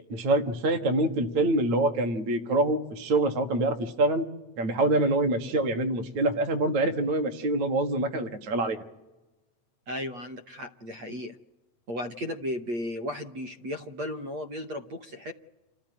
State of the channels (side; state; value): left; late; 8.5 ms